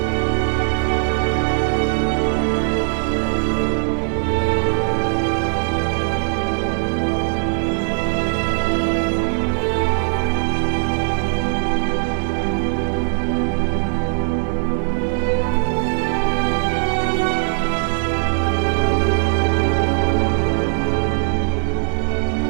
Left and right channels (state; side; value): silent; left; digital silence